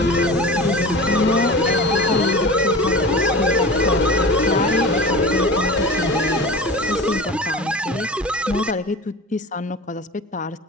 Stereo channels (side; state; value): both; normal; correlation 0.33